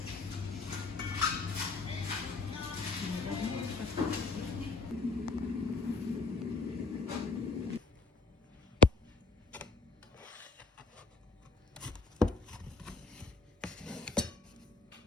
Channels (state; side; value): quieter; right; 3.4 dB